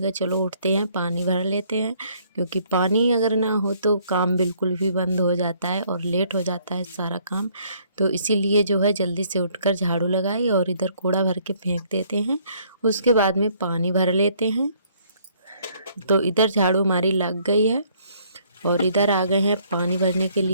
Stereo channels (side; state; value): both; inverted; correlation -0.64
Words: कहा चलो उठते हैं, पानी भर लेते हैं। क्योंकि पानी अगर ना हो तो काम बिल्कुल भी बंद हो जाता है और लेट हो जाता है सारा काम। तो इसीलिए जो है जल्दी से उठकर झाड़ू लगाई और इधर कूड़ा भर के फेंक देते हैं, उसके बाद में पानी भर लेते हैं। तो इधर झाड़ू हमारी लग गई है और इधर आ गए हैं पानी भरने के